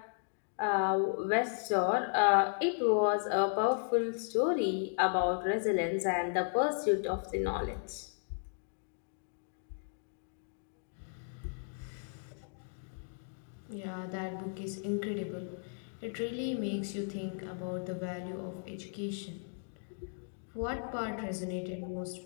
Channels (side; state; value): right; silent; digital silence